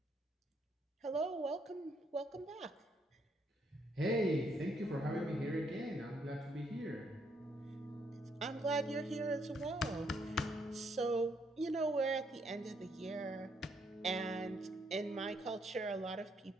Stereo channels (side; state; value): both; normal; correlation 0.72